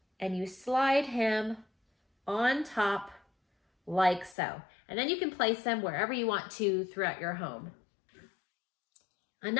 and you slide him on top like so. And then you can place them wherever you want to throughout your home.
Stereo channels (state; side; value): drops out; right; at 4.4 s